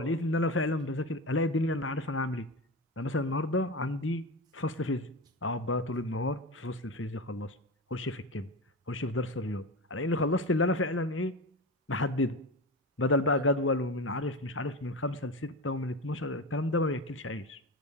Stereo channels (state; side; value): normal; both; correlation 0.24